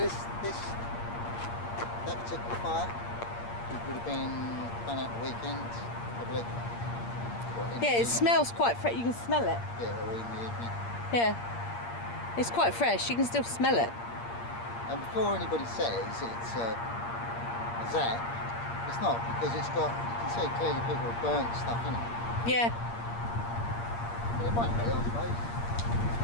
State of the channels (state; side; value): late; right; 8.6 ms